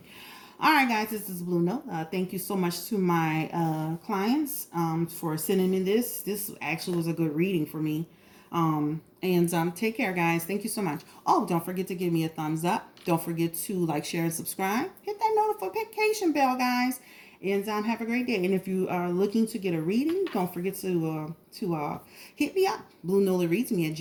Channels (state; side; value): identical; both; correlation 1.00